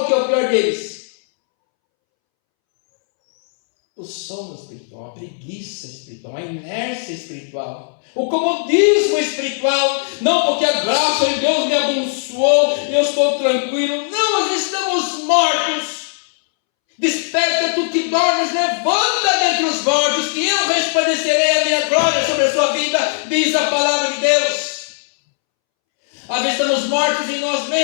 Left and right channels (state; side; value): silent; right; 67 dB below the other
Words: que é o pior deles. o sono espiritual, a preguiça espiritual, a inércia espiritual, o comodismo espiritual, não porque a graça de Deus me abençoou e eu estou tranquilo, não, nós estamos mortos. Desperta tu que dormes, levanta dentre os mortos, que eu resplandecerei a minha glória sobre a sua vida, diz a palavra de Deus. Às vezes estamos mortos em nós